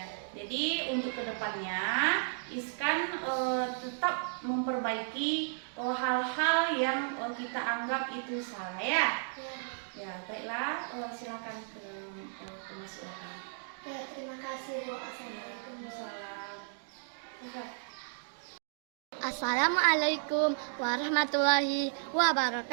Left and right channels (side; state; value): left; silent; digital silence